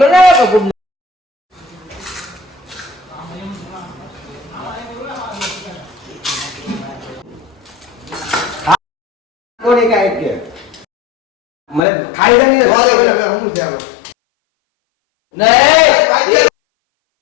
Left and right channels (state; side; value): drops out; right; at 11.8 s